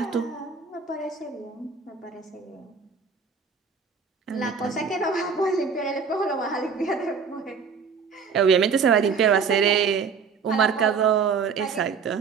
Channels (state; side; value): quieter; left; 5.8 dB